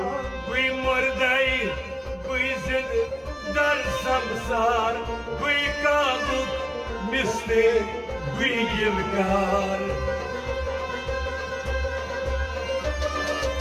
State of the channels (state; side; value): identical; both; correlation 1.00